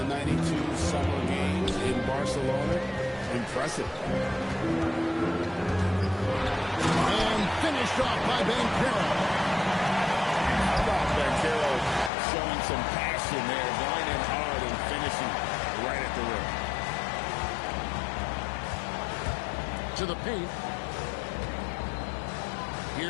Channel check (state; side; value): drops out; right; at 12.1 s